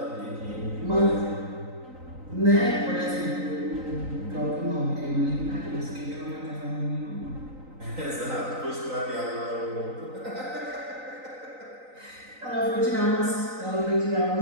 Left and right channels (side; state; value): left; late; 3.9 ms